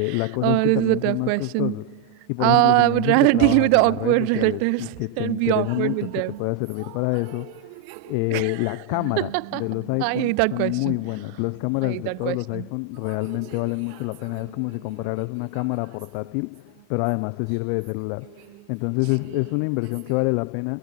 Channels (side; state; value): both; different; correlation 0.01